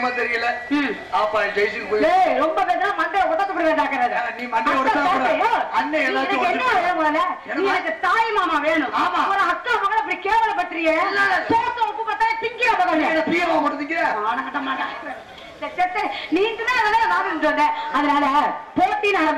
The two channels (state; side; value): identical; both; correlation 1.00